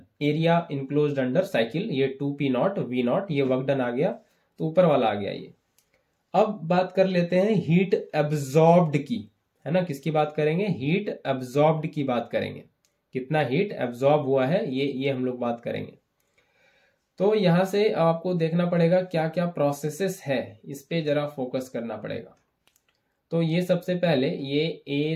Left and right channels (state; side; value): identical; both; correlation 1.00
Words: area enclosed under cycle, ये 2P0 V0, ये वर्क डन आ गया, तो ऊपर वाला आ गया ये। अब बात कर लेते हैं हीट एब्जॉर्ब्ड की, है ना, किसकी बात करेंगे, हीट एब्जॉर्ब्ड की बात करेंगे, कितना हीट एब्जॉर्ब हुआ है, ये हम लोग बात करेंगे। तो यहां से आपको देखना पड़ेगा क्या क्या प्रोसेसेस है, इस पे जरा फोकस करना पड़ेगा। तो ये सबसे पहले ये